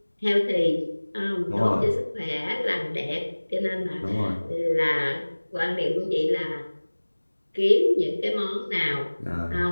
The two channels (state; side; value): inverted; both; correlation -1.00